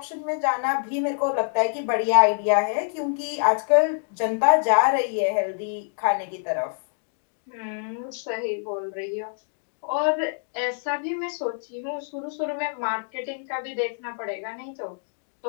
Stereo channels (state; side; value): silent; right; digital silence